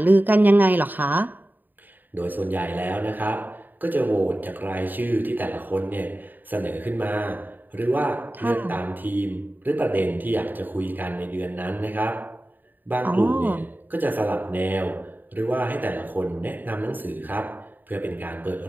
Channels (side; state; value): left; late; 0.089 ms